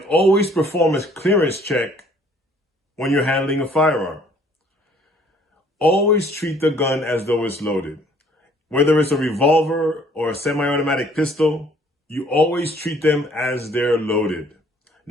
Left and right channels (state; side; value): normal; both; correlation 0.59